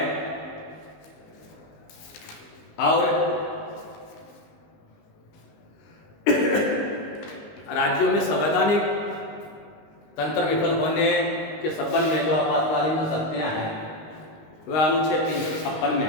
और राज्यों में संवैधानिक तंत्र विफल होने के संबंध में जो आपातकालीन जो शक्तियां हैं वह अनुच्छेद 356 में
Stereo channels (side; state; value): right; late; 19 ms